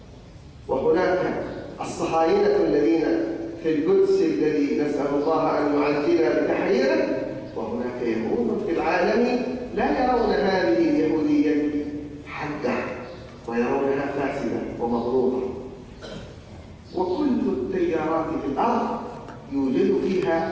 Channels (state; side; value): identical; both; correlation 1.00